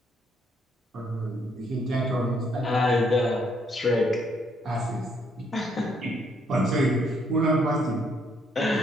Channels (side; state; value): both; normal; correlation 0.70